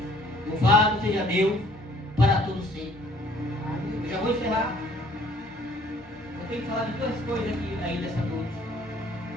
Louvado seja Deus para todos sempre. Eu já vou encerrar. Eu tenho que falar de duas coisas aqui ainda essa noite.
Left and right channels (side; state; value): both; normal; correlation 0.58